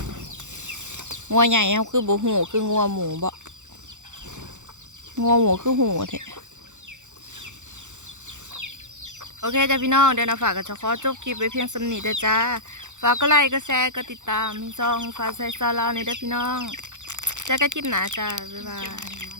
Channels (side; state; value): left; late; 0.85 ms